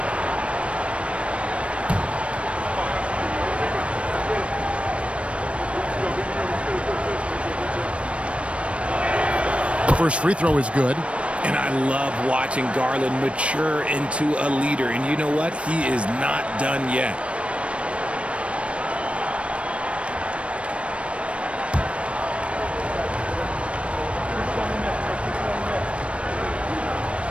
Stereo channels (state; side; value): late; left; 0.061 ms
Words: The first free throw is good. And I love watching Garland mature into a leader. And you know what? He is not done yet.